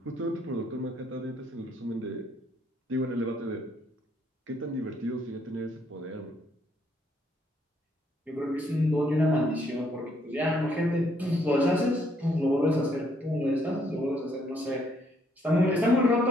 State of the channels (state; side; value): normal; both; correlation 0.70